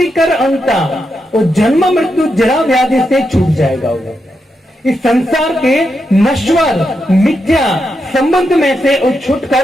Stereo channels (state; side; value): normal; both; correlation 0.84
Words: कर अंता, वो जन्म मृत्यु जरा व्याधि से छूट जाएगा। वो इस संसार के नश्वर मिथ्या संबंध में से वो